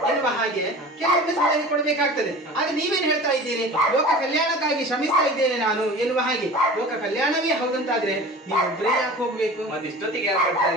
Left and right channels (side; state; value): both; normal; correlation 0.39